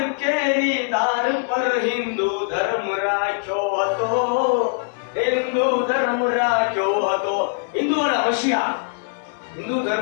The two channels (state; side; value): silent; right; digital silence